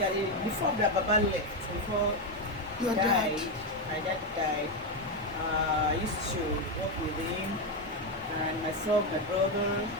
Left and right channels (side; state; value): both; normal; correlation 0.07